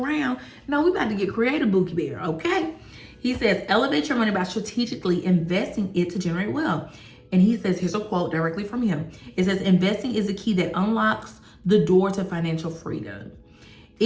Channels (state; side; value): identical; both; correlation 1.00